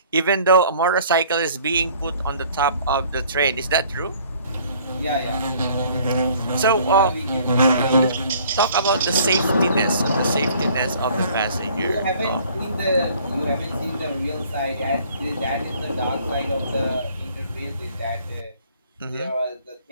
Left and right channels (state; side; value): inverted; both; correlation -0.56